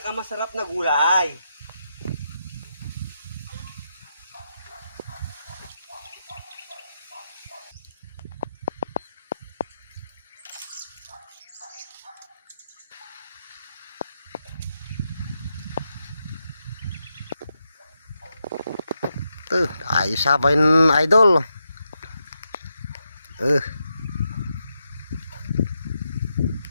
na gulay. Ayos sabayin idol.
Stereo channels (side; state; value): both; inverted; correlation -0.85